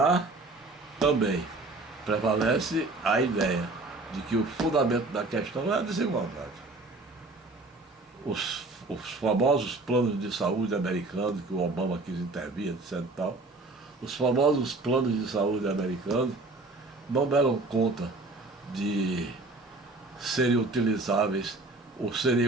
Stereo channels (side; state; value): left; quieter; 3.2 dB